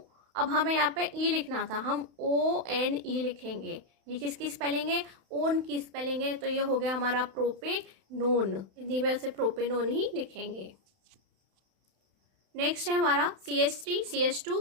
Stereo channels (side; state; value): left; late; 31 ms